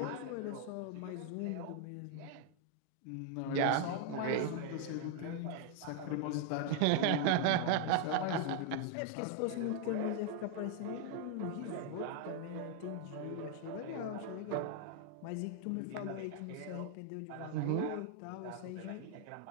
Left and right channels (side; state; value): both; different; correlation 0.00